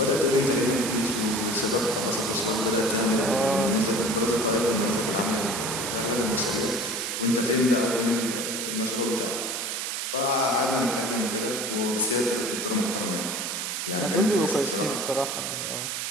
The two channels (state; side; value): noise; right; hiss, 3 dB below the sound